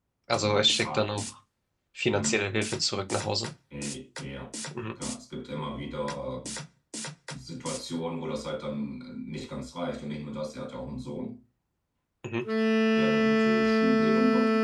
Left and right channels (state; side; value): identical; both; correlation 1.00